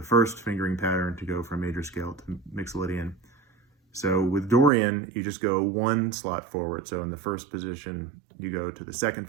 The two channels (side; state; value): left; drops out; at 4.7 s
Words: first fingering pattern to go from major scale to Mixolydian. So with Dorian, you just go 1 slot forward. So in the first position, you go to the second